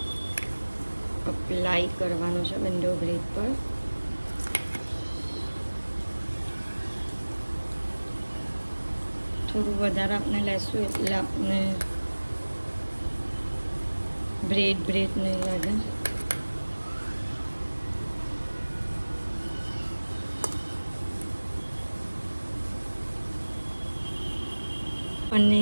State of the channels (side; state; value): both; inverted; correlation -1.00